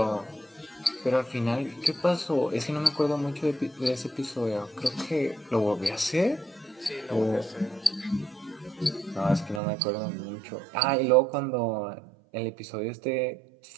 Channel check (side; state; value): left; drops out; at 9.6 s